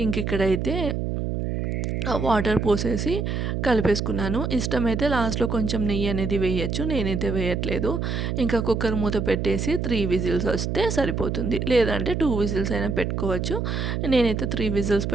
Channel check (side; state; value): right; noise; hum, 1 dB below the sound